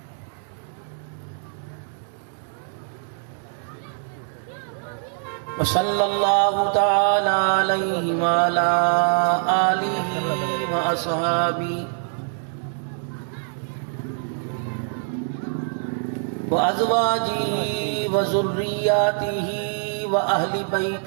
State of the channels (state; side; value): silent; left; 63 dB below the other